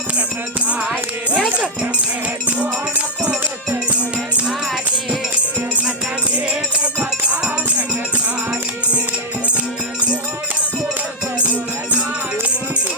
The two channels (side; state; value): both; normal; correlation -0.01